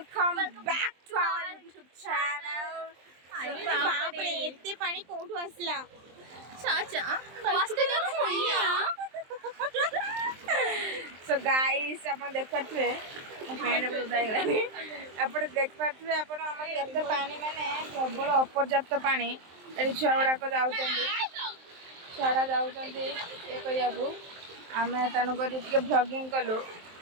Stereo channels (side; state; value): left; late; 23 ms